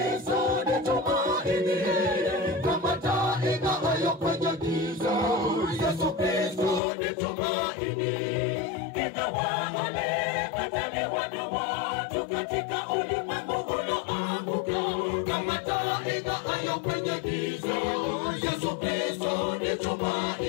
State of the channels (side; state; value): right; drops out; at 6.8 s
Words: nitumaini. Kama taa ing'aayo kwenye giza, Yesu Kristo nitumaini. Ingawa walikataliwa na watu katika ulimwengu uloanguka, kama taa ing'aayo kwenye giza, Yesu Kristo